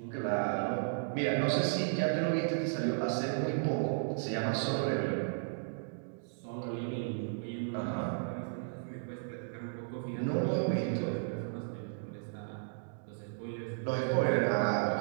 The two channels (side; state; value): left; silent; digital silence